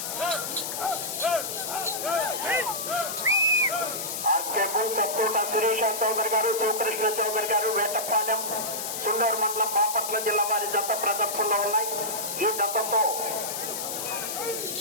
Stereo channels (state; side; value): noise; left; hiss, 5 dB below the sound